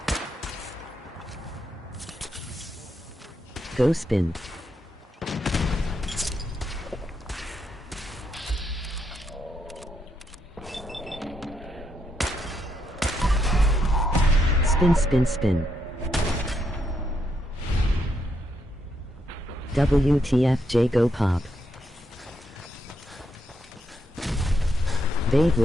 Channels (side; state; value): both; normal; correlation 0.78